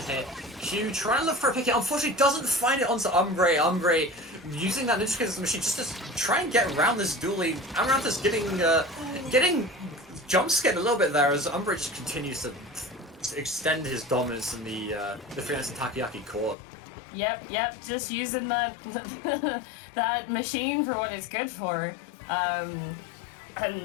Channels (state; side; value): drops out; right; at 16.6 s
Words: Q trying to look for a pick, unfortunately doesn't find it onto Umbra. Umbra using that Ninja Kid's machine just to try and get around this duelie. Amaranthus getting jump scared a little bit there as Umbra just continues to extend his dominance in the Freelancing Takoyaki core. Yep, just using that that machine for what it's good for. And